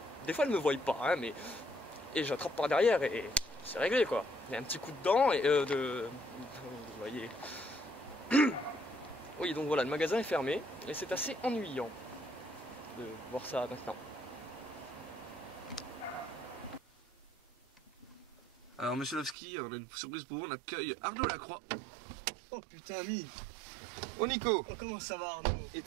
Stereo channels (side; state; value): left; drops out; at 19.4 s